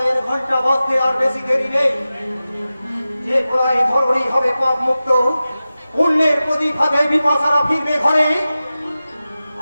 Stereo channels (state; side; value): inverted; both; correlation -0.95